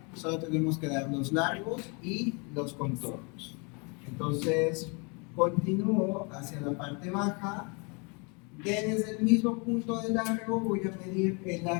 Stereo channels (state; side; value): quieter; right; 32.8 dB